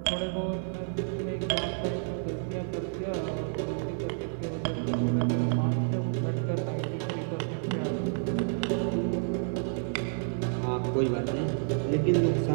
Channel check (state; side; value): silent; left; 58 dB below the other